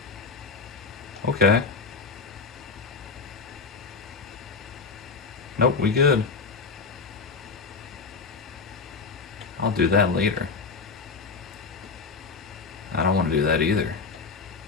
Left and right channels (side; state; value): right; quieter; 4.5 dB